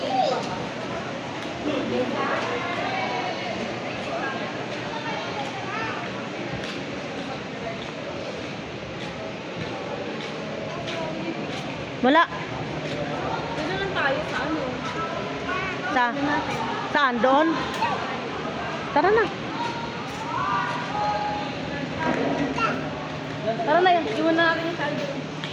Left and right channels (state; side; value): identical; both; correlation 1.00